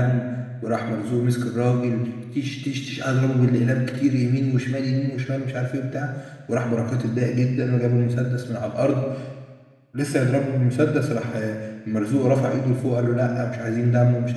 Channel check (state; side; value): identical; both; correlation 1.00